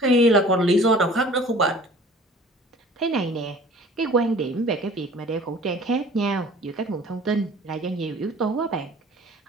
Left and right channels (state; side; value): normal; both; correlation 0.48